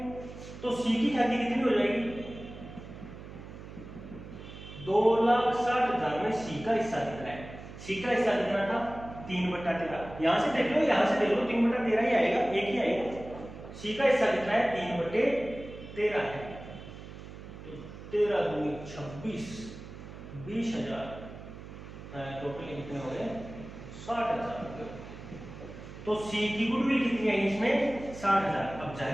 तो सी की ख्याति कितनी हो जाएगी? 2,60,000 में सी का हिस्सा कितना है? सी का हिस्सा कितना था? 3/13। यहां से देख लो, यहां से देख लो, 3/13 ही आएगा, एक ही आएगा। सी का हिस्सा कितना है? 3/13 है। तो 13 दूनी 26, 20,000, टोटल कितने हो गए? 60,000। तो सी की गुडविल कितनी है इसमें? 60,000। अब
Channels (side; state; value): right; noise; hum, 14 dB below the sound